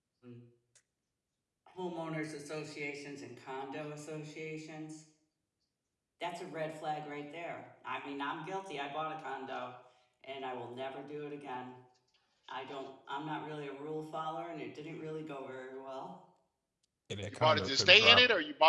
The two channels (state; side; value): identical; both; correlation 1.00